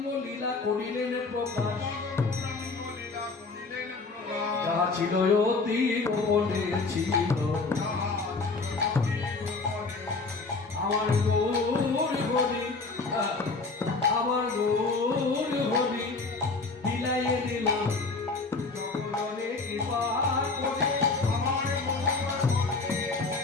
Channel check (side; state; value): right; quieter; 3.9 dB